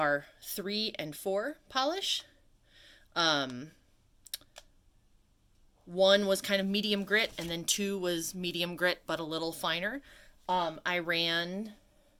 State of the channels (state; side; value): identical; both; correlation 1.00